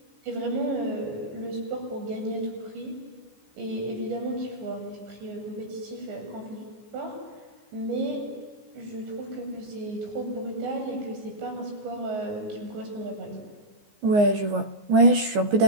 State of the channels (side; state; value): left; late; 14 ms